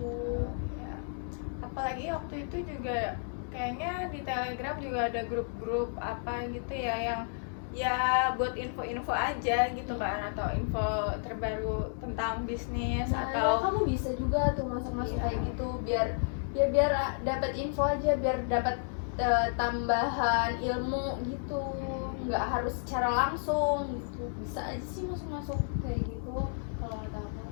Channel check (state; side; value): silent; right; digital silence